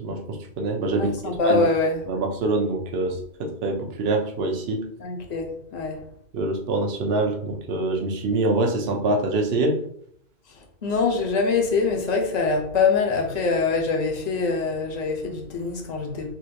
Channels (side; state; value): left; late; 1.9 ms